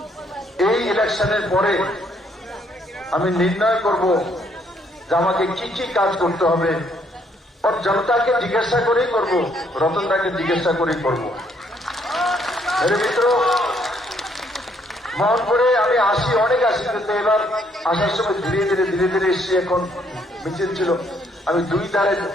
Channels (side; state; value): both; normal; correlation 0.69